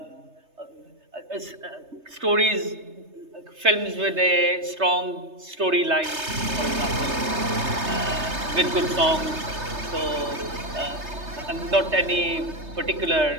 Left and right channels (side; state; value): left; late; 3.3 ms